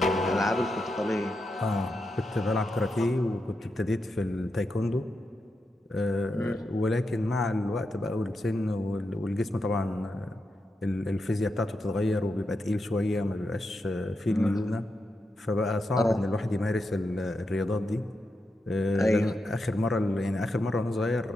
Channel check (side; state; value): both; normal; correlation 0.86